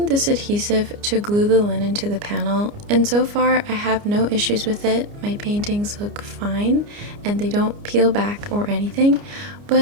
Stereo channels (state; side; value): late; left; 29 ms